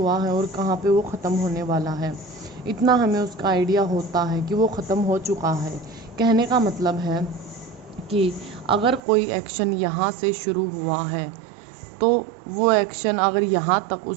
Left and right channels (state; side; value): drops out; left; at 9.0 s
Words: है और कहाँ पे वो ख़त्म होने वाला है। इतना हमें उसका आइडिया होता है कि वो ख़त्म हो चुका है। कहने का मतलब है कि अगर कोई एक्शन यहाँ से शुरू हुआ है तो वो एक्शन अगर यहाँ तक